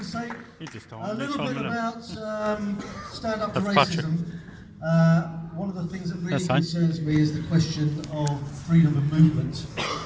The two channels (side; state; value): both; identical; correlation 1.00